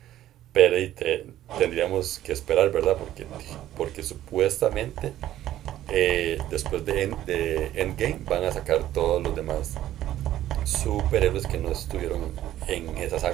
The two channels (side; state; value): left; quieter; 13.0 dB